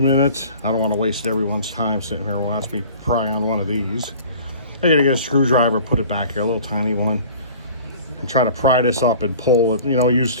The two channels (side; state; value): both; inverted; correlation -0.45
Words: I don't want to waste everyone's time sitting here watching me pry on one of these. I got to get a screwdriver, put it back here, a little tiny one, and try to pry this up and pull it. You know, use